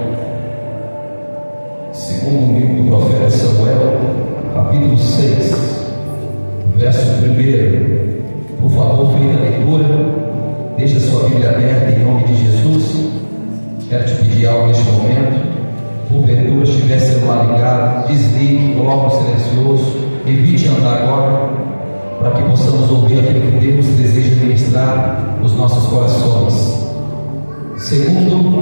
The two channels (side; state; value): both; inverted; correlation -1.00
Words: segundo livro do profeta Samuel, capítulo 6, verso 1. Por favor, feita a leitura. Deixa a sua Bíblia aberta em nome de Jesus. Quero te pedir algo neste momento. Porventura, se tiver celular ligado, desligue, coloque no silencioso, evite andar agora, para que possamos ouvir aquilo que Deus deseja ministrar nos nossos corações.